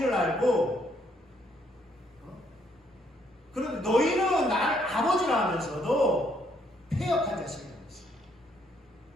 알고, 그런데 너희는 나를 아버지라 하면서도 패역한 자식이라고 했어요.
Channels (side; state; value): both; normal; correlation 0.70